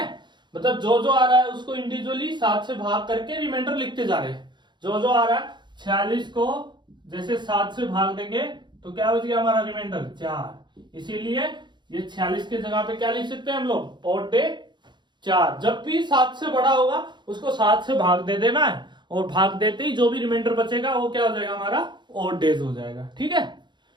मतलब जो जो आ रहा है उसको इंडिविजुअली 7 से भाग करके रिमाइंडर लिखते जा रहे हैं। जो जो आ रहा है 46 को जैसे 7 से भाग देंगे तो क्या बच गया हमारा रिमाइंडर 4, इसीलिए ये 46 के जगह पे क्या लिख सकते हैं हम लोग ऑड डे 4। जब भी 7 से बड़ा होगा उसको 7 से भाग दे देना है, और भाग देते ही जो भी रिमाइंडर बचेगा वो क्या हो जाएगा हमारा ऑड डेज हो जाएगा। ठीक है,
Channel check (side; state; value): left; late; 0.22 ms